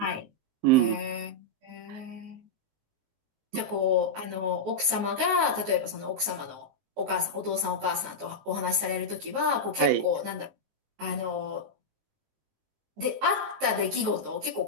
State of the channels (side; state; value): left; late; 19 ms